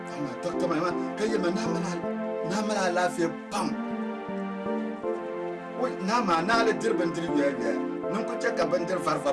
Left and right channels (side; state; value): both; identical; correlation 1.00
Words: amma dokta mai ma kai ma na mana lafiya pam wai na ma na la dirban dirbiya nan ku ce gaban dir